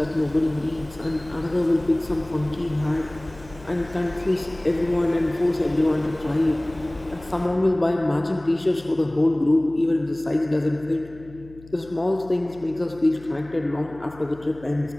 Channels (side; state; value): left; noise; hum, 21 dB below the sound